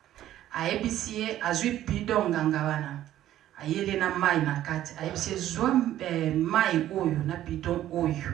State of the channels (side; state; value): left; quieter; 12.8 dB